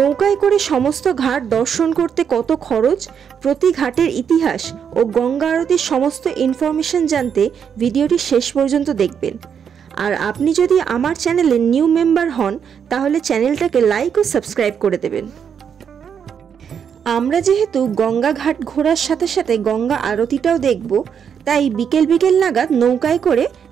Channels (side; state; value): left; quieter; 7.6 dB